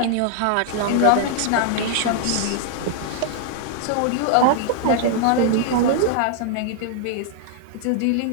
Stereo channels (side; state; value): both; different; correlation -0.01